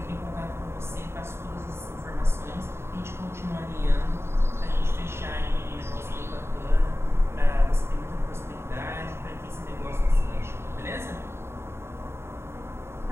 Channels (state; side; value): late; left; 0.12 ms